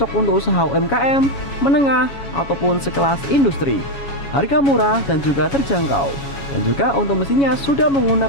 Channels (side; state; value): right; late; 7.2 ms